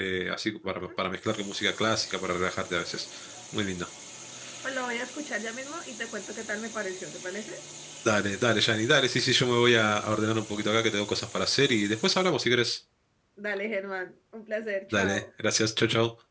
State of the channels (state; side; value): identical; both; correlation 1.00